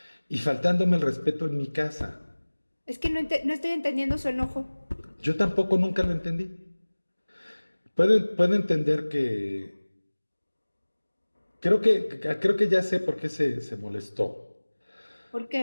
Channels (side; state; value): both; inverted; correlation -1.00